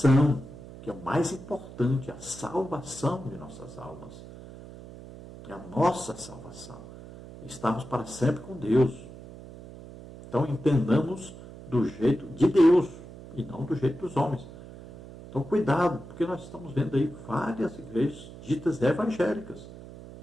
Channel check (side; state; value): right; noise; hum, 16 dB below the sound